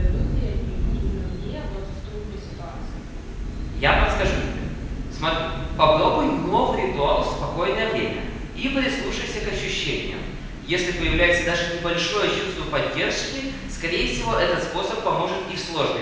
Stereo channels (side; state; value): both; identical; correlation 1.00